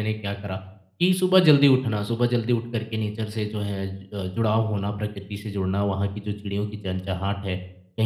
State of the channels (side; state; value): both; identical; correlation 1.00